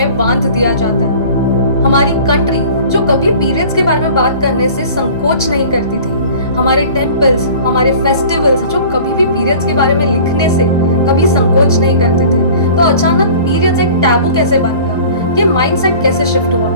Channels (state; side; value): inverted; both; correlation -0.44